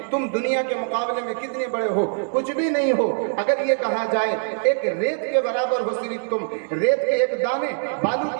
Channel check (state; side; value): silent; left; digital silence